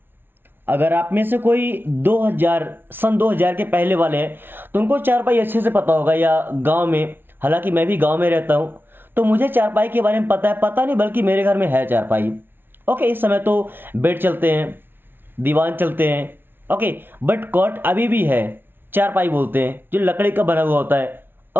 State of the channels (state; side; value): late; left; 0.10 ms